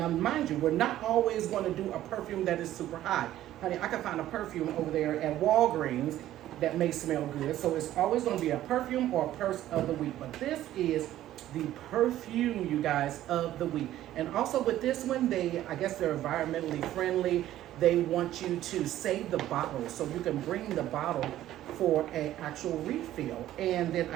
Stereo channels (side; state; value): left; quieter; 13.4 dB